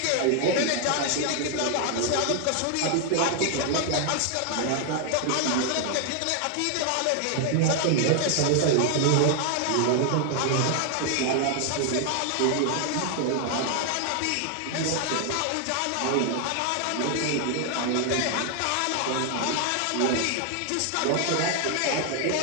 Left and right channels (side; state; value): both; different; correlation 0.00